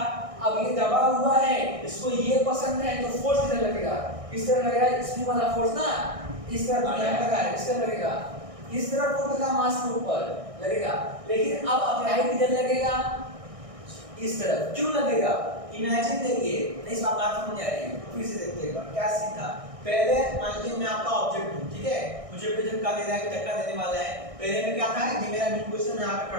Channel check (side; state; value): left; late; 1.6 ms